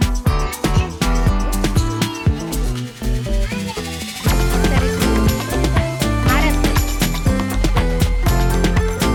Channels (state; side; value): identical; both; correlation 1.00